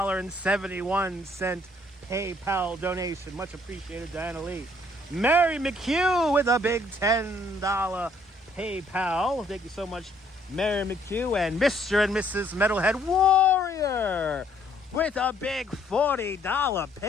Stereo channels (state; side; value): normal; both; correlation 0.65